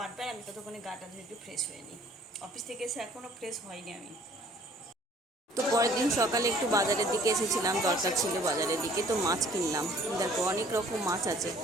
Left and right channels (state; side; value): normal; both; correlation 0.56